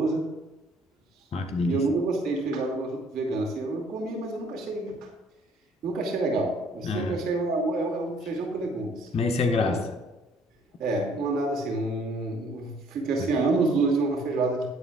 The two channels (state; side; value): normal; both; correlation 0.60